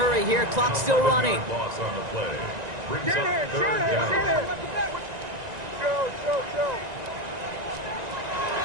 here. Clock's still running. Loss on the play. Brings up third down.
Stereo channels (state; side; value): late; left; 1.9 ms